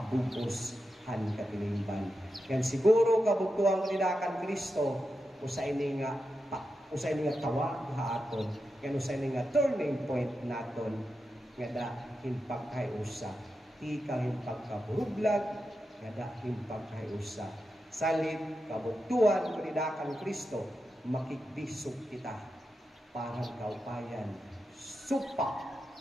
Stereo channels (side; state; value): both; normal; correlation 0.89